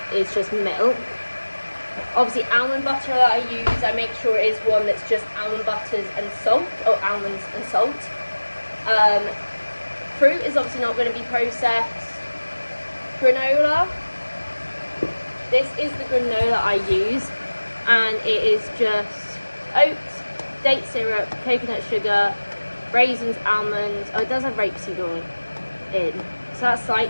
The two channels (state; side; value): inverted; both; correlation -1.00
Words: is just milk. Obviously, almond butter that I use, I make sure it is one that's just almond butters and salt, or almonds and salt. Fruit is obviously not going to be processed. Granola. This is the granola I use, and it is just oats, date syrup, coconut sugar, raisins, almonds. Oh, it does have rapeseed oil in. So that's